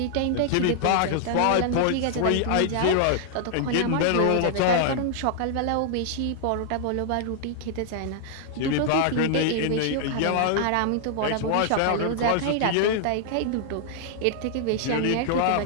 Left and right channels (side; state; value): both; different; correlation -0.01